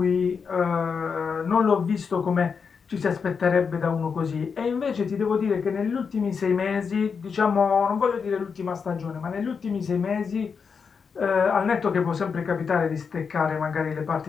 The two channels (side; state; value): right; quieter; 5.9 dB